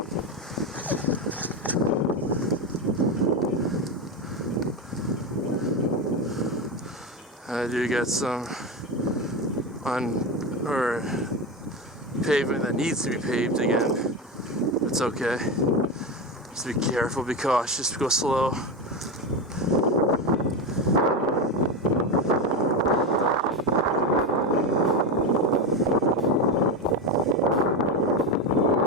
I do got some pavement that needs to be paved again. It's okay. Just be careful, be cautious, go slow.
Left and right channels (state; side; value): normal; both; correlation 0.16